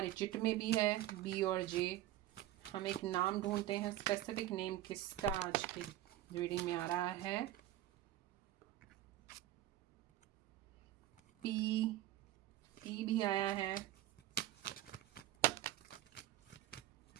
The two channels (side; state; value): left; quieter; 13.9 dB